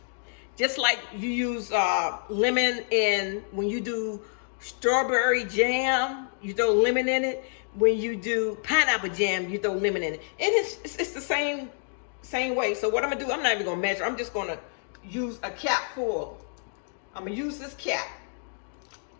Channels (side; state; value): right; silent; digital silence